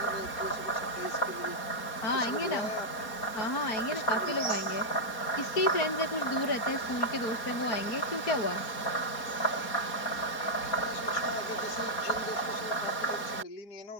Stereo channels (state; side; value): late; right; 4.2 ms